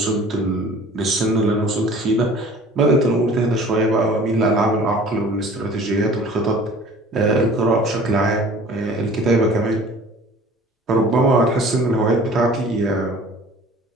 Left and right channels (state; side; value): normal; both; correlation 0.46